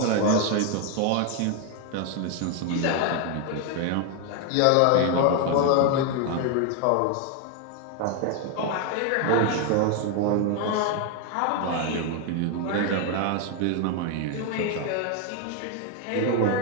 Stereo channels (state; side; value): different; both; correlation 0.01